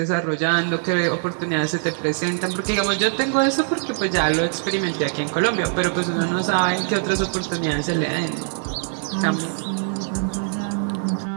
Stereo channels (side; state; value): left; silent; 64 dB below the other